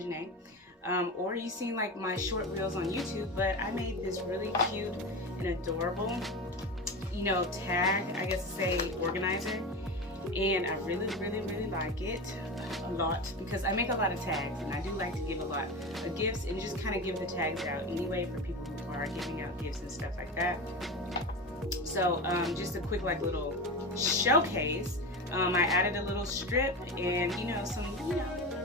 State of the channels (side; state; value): both; normal; correlation 0.24